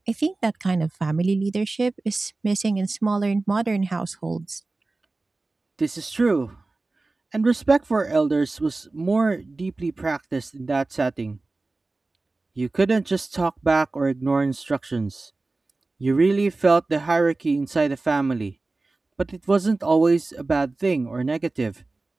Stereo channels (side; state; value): left; quieter; 3.3 dB